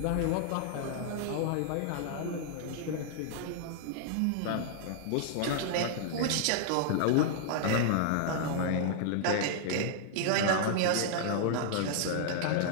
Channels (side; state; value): both; different; correlation -0.01